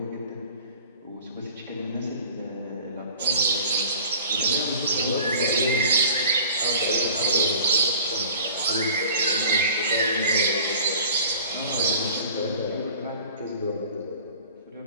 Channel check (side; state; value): both; inverted; correlation -0.45